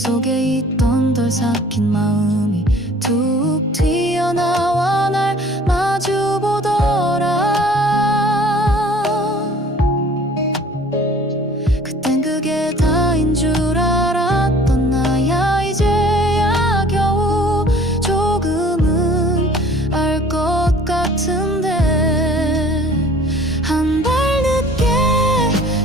있던 덜 삭힌 마음이 툭 튀어나와 날 마주보더라. 그땐 그게 다인 줄 알았던 나야. 이제야 겨우 조금은 알 것 같은데 한 발 늦게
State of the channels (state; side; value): normal; both; correlation 0.51